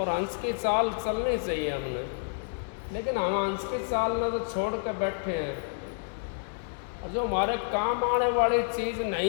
हंस की चाल चलनी चाहिए हमें, लेकिन हम हंस की चाल में तो छोड़ के बैठे हैं। जो हमारे काम आने वाली चीज़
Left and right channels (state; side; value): silent; right; digital silence